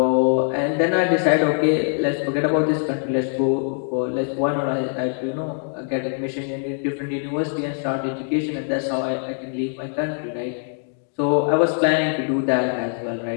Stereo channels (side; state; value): right; silent; 64 dB below the other